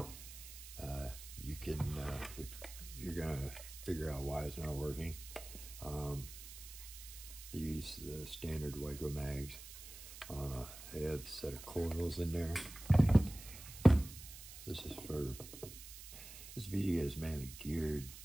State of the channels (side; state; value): right; noise; hiss, 13 dB below the sound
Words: you can, if you're gonna figure out why it's not working, these standard WICO mags, they have a set of coils in there. This video is mainly geared